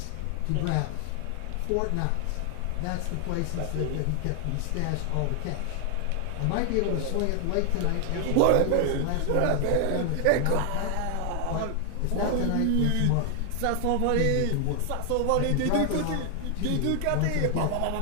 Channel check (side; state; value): both; different; correlation 0.00